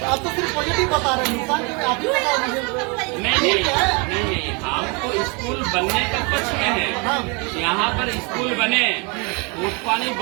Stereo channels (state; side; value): quieter; left; 31.5 dB